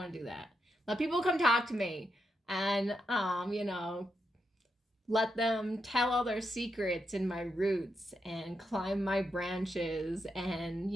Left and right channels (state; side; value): normal; both; correlation 0.83